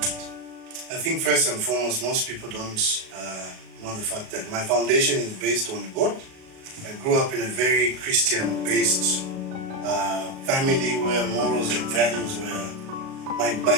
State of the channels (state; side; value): late; left; 37 ms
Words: did? I think first and foremost, most people don't know the fact that my foundation is based on God. I grew up in a very Christian-based family where morals and values were. My